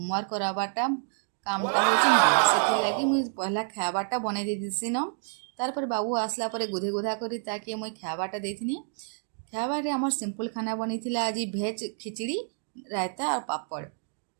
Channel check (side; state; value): left; silent; 56 dB below the other